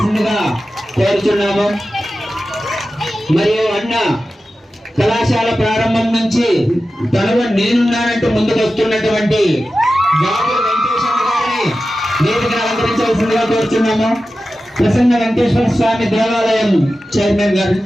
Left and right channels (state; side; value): normal; both; correlation 0.93